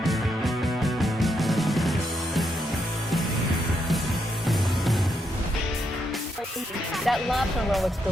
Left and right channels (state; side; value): normal; both; correlation 0.79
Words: That lobster roll looks